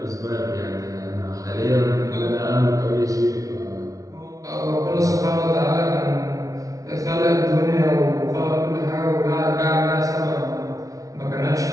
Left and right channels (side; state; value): left; late; 0.17 ms